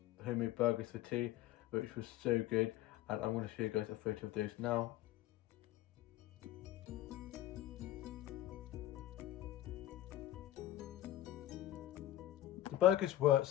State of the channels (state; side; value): quieter; right; 13.7 dB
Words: homemade burgers for tea, which was so good, and I'm going to show you guys a photo of those now. The burgers were